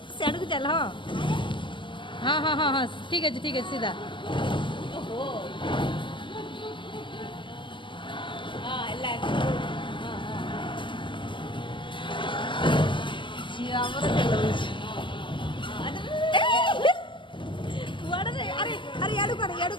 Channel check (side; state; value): right; late; 0.24 ms